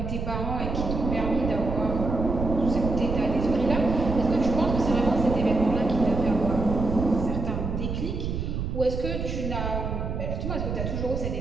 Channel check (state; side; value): noise; right; rumble, 3 dB below the sound